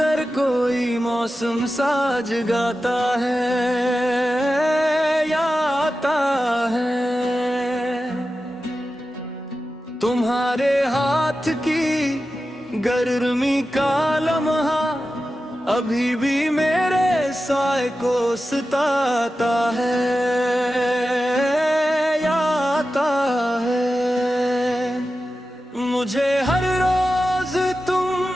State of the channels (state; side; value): normal; both; correlation 0.93